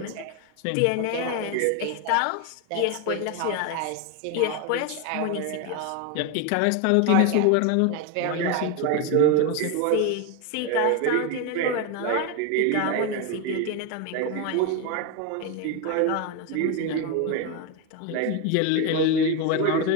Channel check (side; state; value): both; different; correlation 0.02